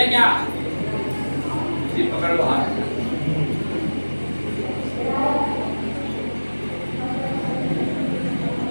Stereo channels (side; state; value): both; inverted; correlation -1.00